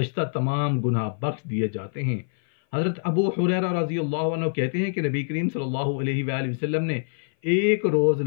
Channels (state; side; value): silent; right; 57 dB below the other